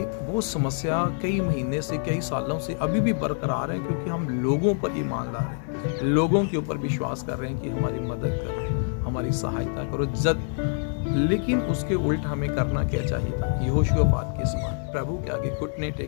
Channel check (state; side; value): silent; right; 58 dB below the other